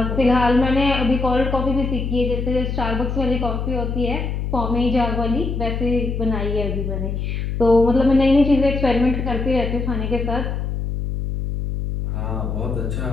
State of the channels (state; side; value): noise; left; hum, 3 dB below the sound